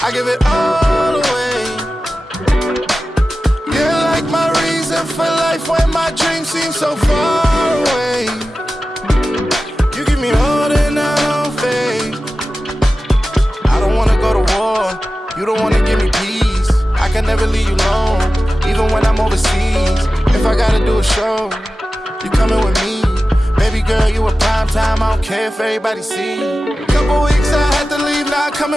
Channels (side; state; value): both; normal; correlation 0.94